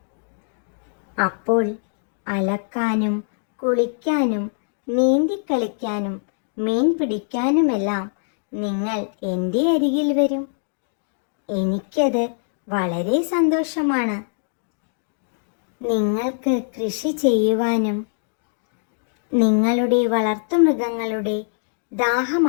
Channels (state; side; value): silent; right; digital silence